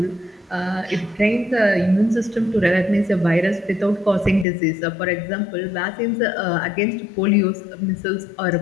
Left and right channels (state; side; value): drops out; right; at 4.5 s